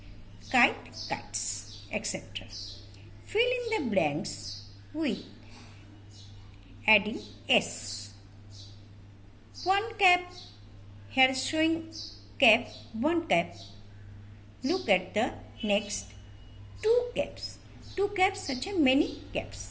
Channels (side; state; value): both; identical; correlation 1.00